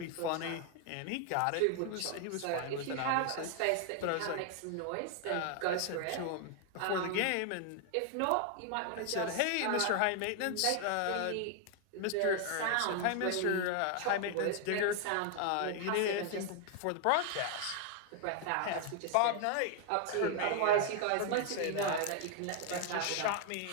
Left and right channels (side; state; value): both; different; correlation 0.00